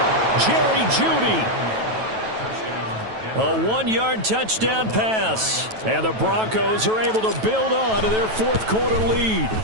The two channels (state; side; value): late; left; 9.2 ms